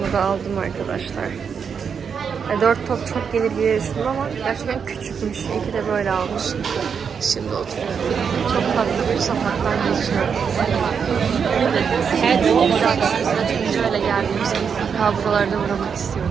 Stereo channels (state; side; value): quieter; left; 6.6 dB